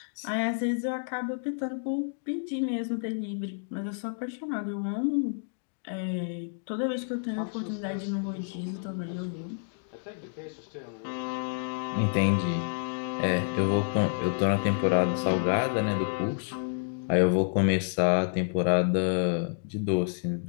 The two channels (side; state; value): right; silent; digital silence